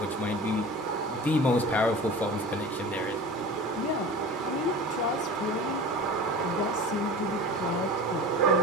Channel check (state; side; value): normal; both; correlation 0.36